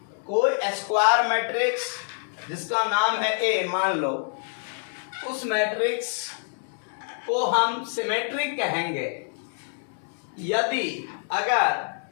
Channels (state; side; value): silent; right; 61 dB below the other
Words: कोई square matrix जिसका नाम है ए मान लो, उस matrix को हम symmetric कहेंगे यदि